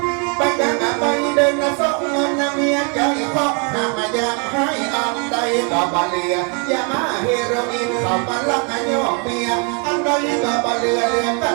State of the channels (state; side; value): quieter; left; 36.5 dB